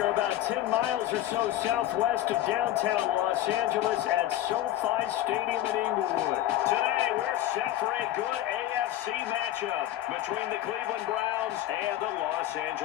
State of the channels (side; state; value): right; quieter; 13.3 dB